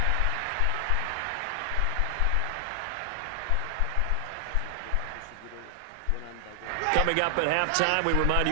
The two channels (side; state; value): both; different; correlation 0.00